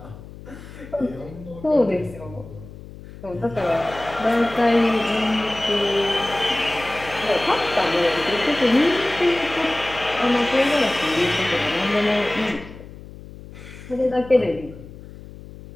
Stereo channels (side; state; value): left; noise; hum, 16 dB below the sound